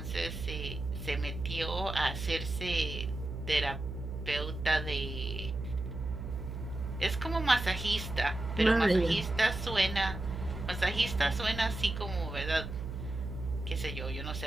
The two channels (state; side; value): noise; right; hum, 7 dB below the sound